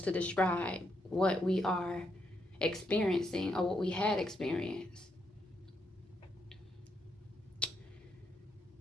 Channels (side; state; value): both; normal; correlation 0.79